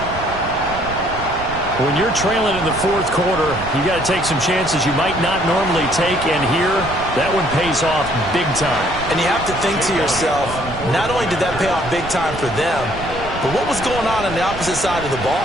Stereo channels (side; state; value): right; noise; rumble, 11 dB below the sound